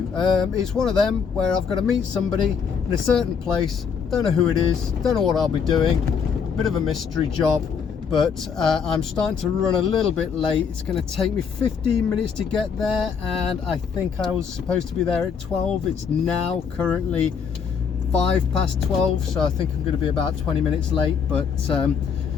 It's one of them where I've got to meet somebody in a certain place, don't know who it is, don't know what I'll be doing, bit of a mystery job, but I'm starting to run a little bit late. It's going to take me 15 minutes to get there, and I think I was supposed to be there at 12. It's now currently 5 past 12, so I think I'm going to be about 20 minutes late, but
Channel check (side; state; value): right; quieter; 6.5 dB